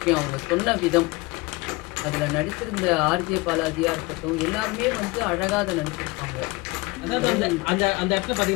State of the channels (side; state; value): right; quieter; 23.8 dB